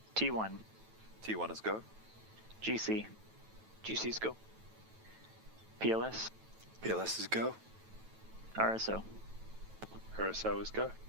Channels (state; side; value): late; left; 9.1 ms